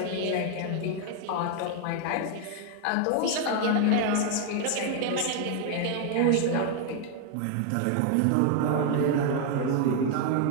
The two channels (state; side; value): different; both; correlation 0.01